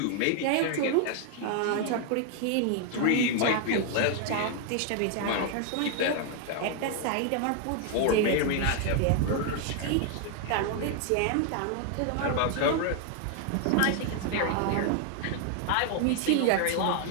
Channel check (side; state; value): both; different; correlation 0.00